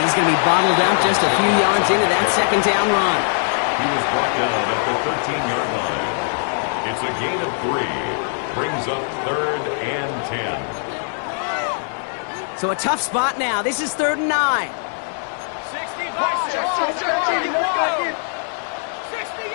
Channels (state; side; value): silent; right; 65 dB below the other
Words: he's going to be bottled out just a few yards into that 2nd down run. He was brought down at the 13-yard line. It's a gain of 3. Brings up 3rd and 10. So a tough spot now. This is 3rd and 9. 60.